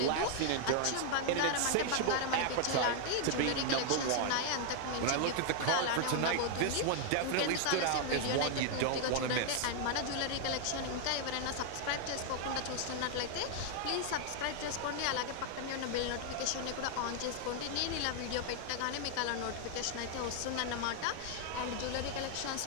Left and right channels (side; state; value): both; different; correlation 0.00